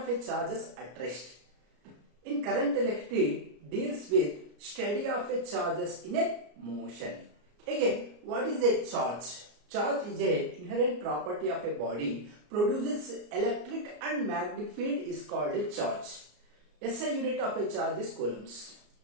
charges at rest. In current electricity deals with study of charges in a motion. Again, what is a charge? Charge is a inherent property of a body, produces electric and magnetic field is called a charge. SI unit of a charge is coulombs.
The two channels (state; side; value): late; left; 34 ms